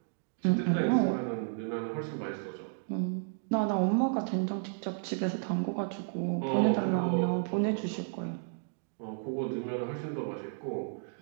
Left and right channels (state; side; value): silent; left; digital silence